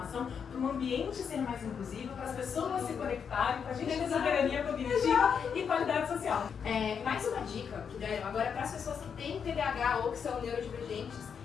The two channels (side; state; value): right; quieter; 6.9 dB